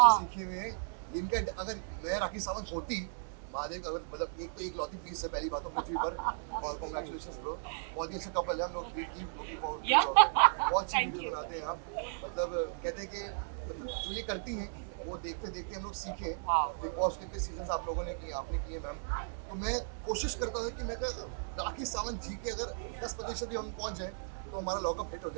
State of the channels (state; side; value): silent; left; 54 dB below the other